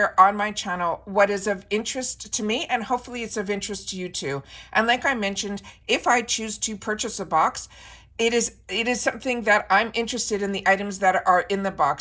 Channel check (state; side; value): identical; both; correlation 1.00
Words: on my channel what is of interest to me, and hopefully it's of interest to you too. And like I mentioned, if I choose to purchase a box, it is something that I'm interested in the items that are in the